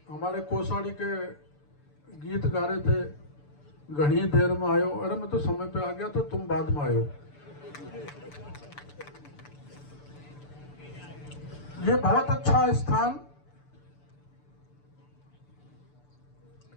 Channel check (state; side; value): late; right; 6.9 ms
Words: हमारे कोसाड़ी के गीत गा रहे थे, घनी देर में आयो। अरे मैं तो समय पे आ गया, तो तुम बाद में आयो। ये बहुत अच्छा स्थान